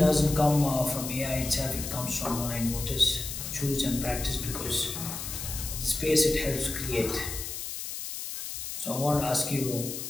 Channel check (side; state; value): left; noise; hiss, 6 dB below the sound